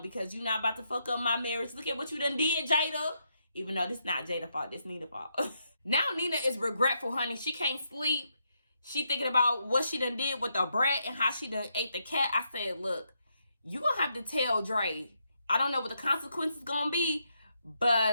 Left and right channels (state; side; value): inverted; both; correlation -0.79